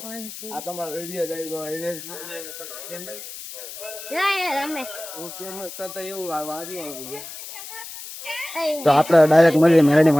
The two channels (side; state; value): left; noise; hiss, 12 dB below the sound